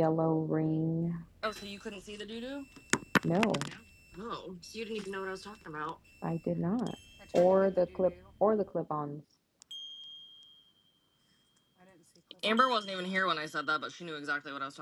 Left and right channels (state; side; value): identical; both; correlation 1.00